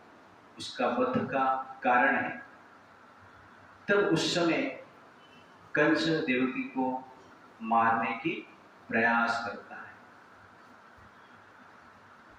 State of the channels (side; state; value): both; identical; correlation 1.00